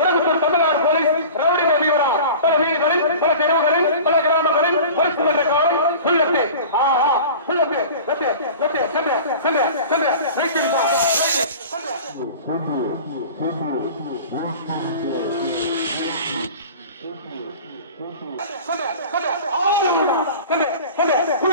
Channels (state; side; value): inverted; both; correlation -0.38